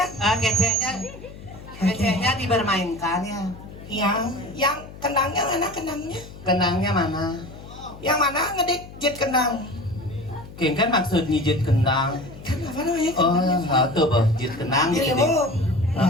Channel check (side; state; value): left; noise; hum, 16 dB below the sound